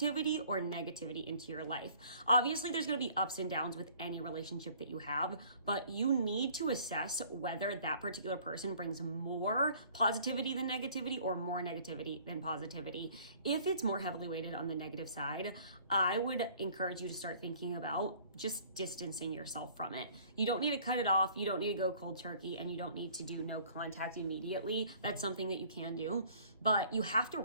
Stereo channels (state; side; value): inverted; both; correlation -0.54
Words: or negativity into your life? Obviously, there's going to be ups and downs with any relationship that you have, but you need to assess whether that particular person brings more positivity than negativity or more negativity than positivity. If it's more heavily weighted on the negative side, I would encourage you to start thinking about just distancing yourself from it. You don't need to cut it off. You don't need to go cold turkey, and you don't need to do no contact immediately. That's something that you can do, but you have to